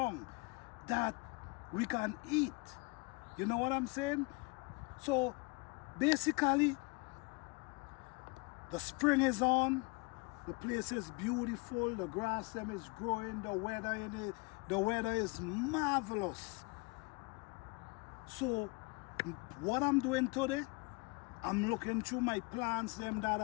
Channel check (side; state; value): right; quieter; 28.6 dB